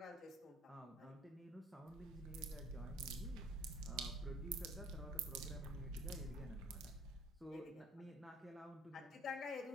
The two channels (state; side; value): normal; both; correlation 0.53